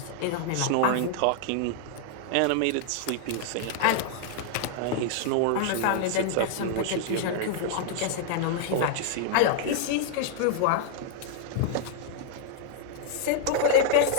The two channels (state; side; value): different; both; correlation 0.00